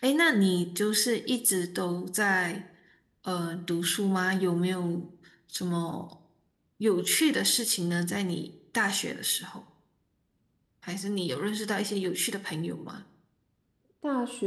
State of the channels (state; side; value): identical; both; correlation 1.00